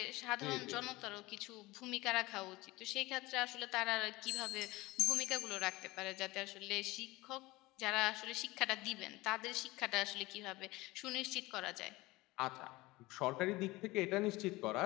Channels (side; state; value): right; quieter; 20.6 dB